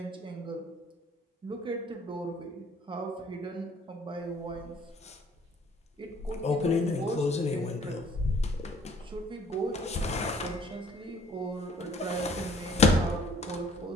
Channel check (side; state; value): both; normal; correlation 0.58